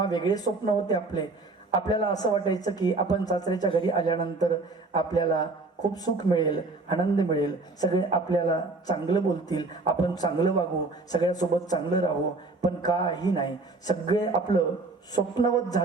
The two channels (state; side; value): quieter; left; 3.5 dB